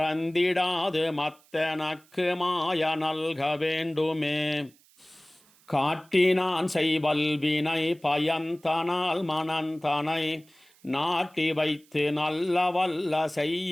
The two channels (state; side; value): noise; right; hiss, 30 dB below the sound